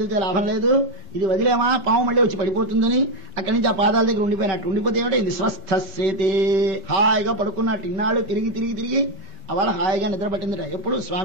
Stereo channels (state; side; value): late; left; 5.2 ms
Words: లాభం లేదు, ఇది వదిలేమా పాము మళ్ళీ వచ్చి పడిపోతుందని అక్కడి నుంచి ఆ పాదాల దగ్గర ఉండిపోయినట్టు. ఉండిపోతే ఏమిటో ఇది స్వస్థసేతే, హాయిగా పడుకున్నట్టు. ఇన్నాళ్ళు తిరిగి అవాళ హాయిగా నిద్ర పట్టిందిరా. ఎప్పుడు